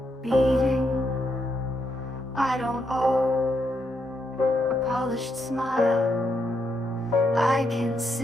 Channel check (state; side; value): normal; both; correlation 0.80